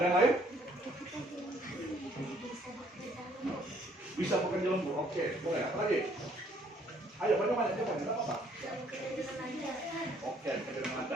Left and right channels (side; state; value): both; normal; correlation 0.63